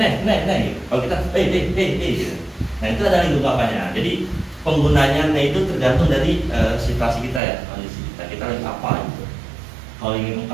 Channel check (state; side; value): drops out; left; at 7.4 s